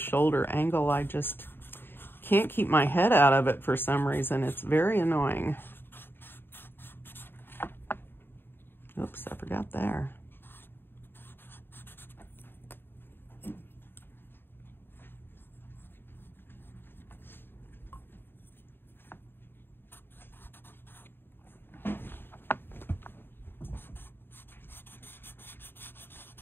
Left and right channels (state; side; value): late; right; 0.10 ms